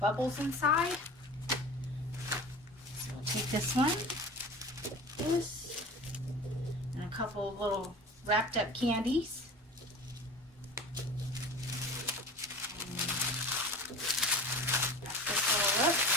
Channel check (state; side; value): normal; both; correlation 0.36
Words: bubbles inside. So we'll take this one, this, and a couple of little wrapped up candies. Wrap this all up,